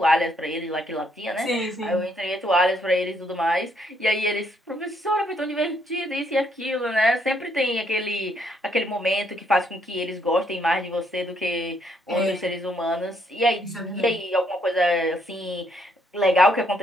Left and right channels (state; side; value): normal; both; correlation 0.71